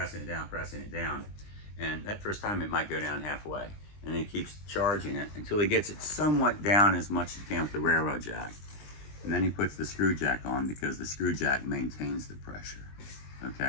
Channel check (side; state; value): right; late; 20 ms